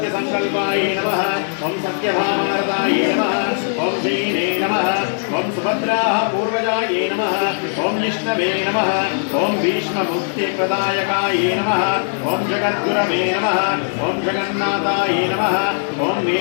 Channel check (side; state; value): right; silent; digital silence